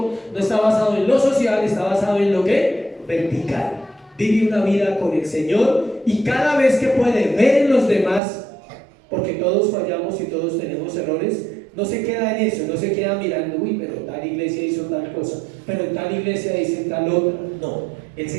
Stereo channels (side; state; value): left; drops out; at 8.2 s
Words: no está basado en lo social, está basado en lo que vertical. Vive una vida con el Señor y cada vez que puede ver en los demás, porque todos fallamos y todos tenemos errores, no se queda en eso, no se queda mirando: uy, pero tal iglesia hizo tal cosa, pero en tal iglesia dice tal otra. No, él